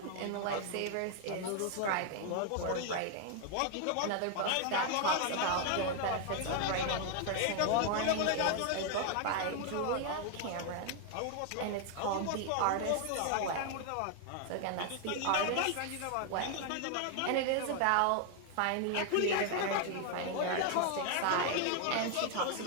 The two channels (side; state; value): both; different; correlation 0.01